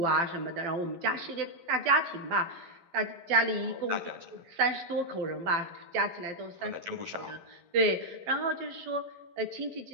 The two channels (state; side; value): late; left; 11 ms